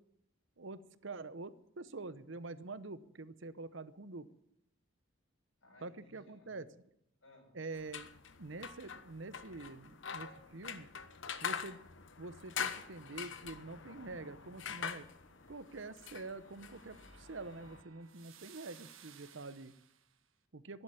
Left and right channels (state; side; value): normal; both; correlation 0.01